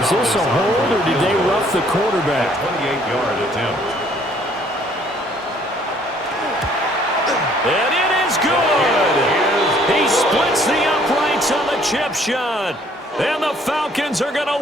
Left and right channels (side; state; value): both; normal; correlation 0.61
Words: Is this a hold, or did they rough the quarterback? 28-yard attempt. And it is good. He splits the uprights on the chip shot. And the Falcons are going